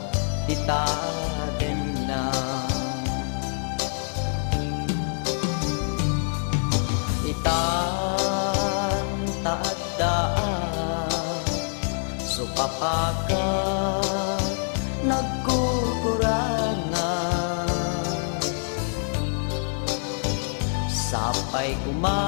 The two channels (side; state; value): right; silent; 61 dB below the other